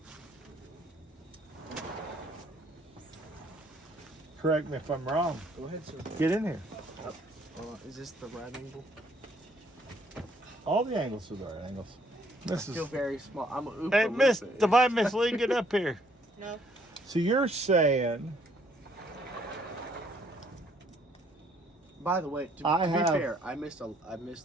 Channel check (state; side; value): normal; both; correlation 0.65